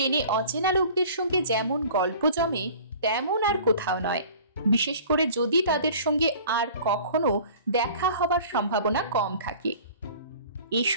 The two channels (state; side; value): inverted; both; correlation -0.46